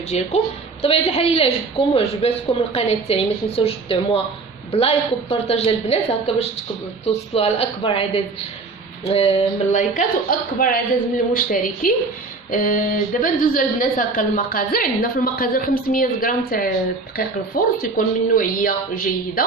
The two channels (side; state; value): left; quieter; 3.9 dB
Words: ديالكم. بطبيعه الحال الا عجبكم وعجباتكم القناه تاعي ما تنساوش تدعموها بلايك وبارطاج البنات هكا باش توصلوا على اكبر عدد من اللايكات واكبر عدد من المشتركين. دابا ندوزو البنات هكا المقادير. عندنا في المقادير 500 غرام تاع دقيق الفرن تيكون من نوعيه جيده.